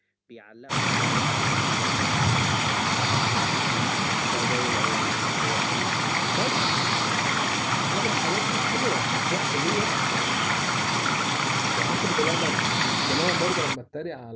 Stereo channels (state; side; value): identical; both; correlation 1.00